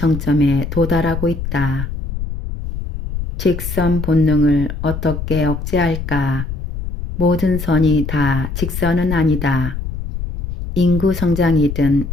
도달하고 있다. 직선 본능을 어떻게 억제할까? 모든 선이 다 직선은 아니다. 인구 성장이든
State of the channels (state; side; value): noise; left; rumble, 6 dB below the sound